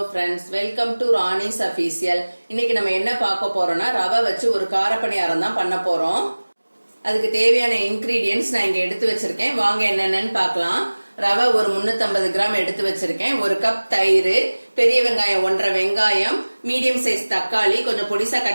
friends, welcome to Rani's official. இன்னைக்கு நம்ம என்ன பார்க்க போறோம்னா ரவை வச்சு ஒரு காரப்பணியாரம் தான் பண்ண போறோம். அதுக்கு தேவையான இன்கிரீடியன்ஸ் நான் இங்க எடுத்து வச்சிருக்கேன். வாங்க என்னென்னு பார்க்கலாம். ரவை ஒரு 350 கிராம் எடுத்து வச்சிருக்கேன். ஒரு கப் தயிர், பெரிய வெங்காயம் 1.5 வெங்காயம், மீடியம் சைஸ் தக்காளி கொஞ்சம் பொடிசா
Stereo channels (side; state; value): both; inverted; correlation -1.00